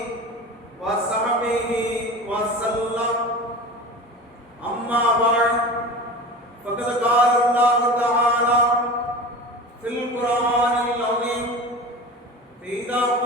وصحبه وسلم أما بعد فقد قال الله تعالى في القرآن العظيم فإذا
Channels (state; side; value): normal; both; correlation 0.33